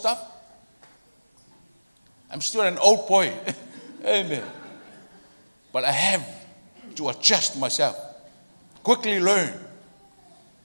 I'm still an old boy. Amen. But I have to adjust myself. Quickly learn.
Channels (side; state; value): both; inverted; correlation -1.00